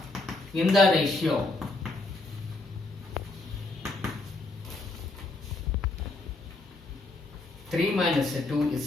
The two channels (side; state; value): right; quieter; 3.2 dB